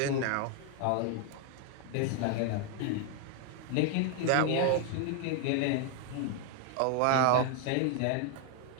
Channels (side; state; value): both; different; correlation 0.00